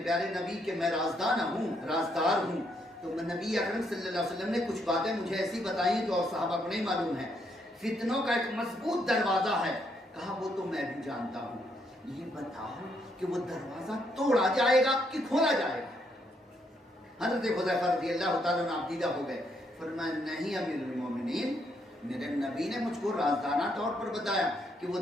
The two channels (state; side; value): normal; both; correlation 0.74